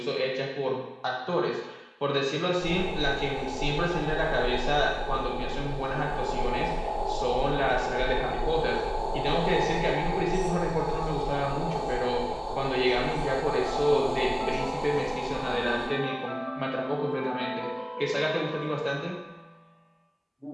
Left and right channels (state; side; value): identical; both; correlation 1.00